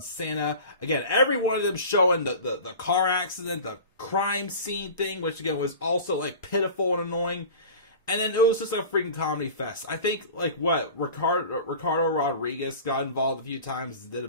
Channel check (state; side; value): inverted; both; correlation -0.37